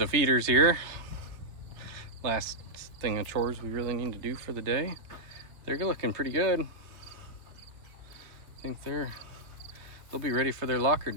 feeders here. Last thing of chores we really need to do for the day. They're looking pretty good. I think they'll be ready for their locker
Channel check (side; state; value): left; late; 3.3 ms